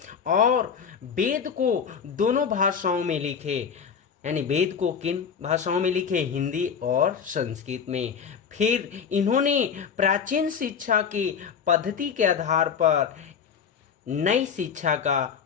और वेद को दोनों भाषाओं में लिखे, यानी वेद को किन भाषाओं में लिखे? हिंदी और संस्कृत में। फिर इन्होंने प्राचीन शिक्षा की पद्धति के आधार पर नई शिक्षा का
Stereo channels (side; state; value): right; quieter; 6.8 dB